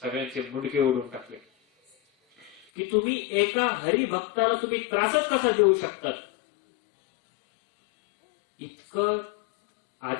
सगळ्यांचे मुंडके ओढून टाकले. की तुम्ही एका हरिभक्ताला तुम्ही त्रासच कसा देऊ शकतात. इतकं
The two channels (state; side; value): drops out; right; at 2.7 s